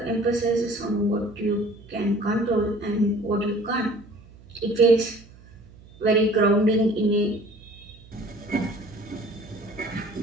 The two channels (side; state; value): right; noise; hum, 22 dB below the sound